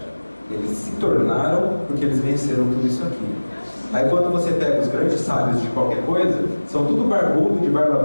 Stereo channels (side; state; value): both; inverted; correlation -1.00